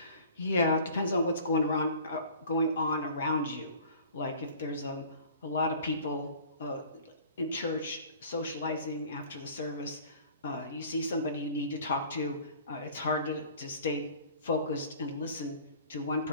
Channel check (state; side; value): inverted; both; correlation -0.47